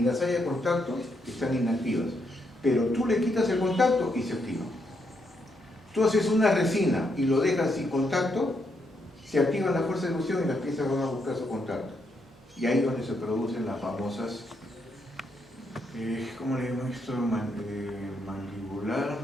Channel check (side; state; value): both; normal; correlation 0.78